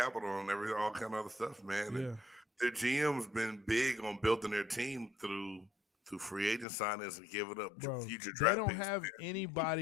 and all kind of other stuff, man. Yeah. Their GM's been big on building their team through free agent signings and giving up Bro, future they draft don't picks. have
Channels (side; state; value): right; drops out; at 6.7 s